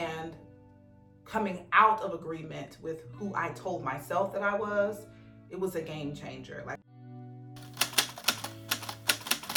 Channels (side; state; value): both; identical; correlation 1.00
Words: coming out of agreement with who I told myself that I was, it was a game changer. Like,